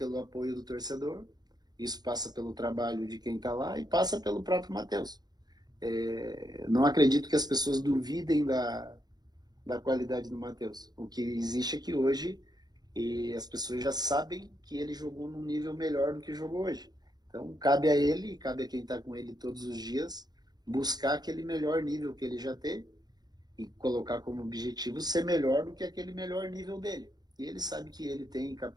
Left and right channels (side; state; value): left; late; 0.19 ms